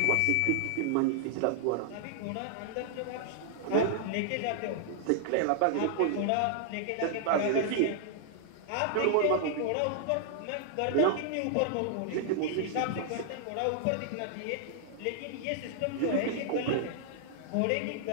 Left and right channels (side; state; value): both; different; correlation -0.01